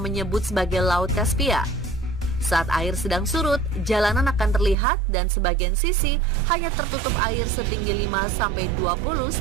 menyebut sebagai Laut Kaspia. Saat air sedang surut, jalanan akan terlihat dan sebagian sisi hanya tertutup air setinggi 5-20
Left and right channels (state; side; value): drops out; left; at 4.8 s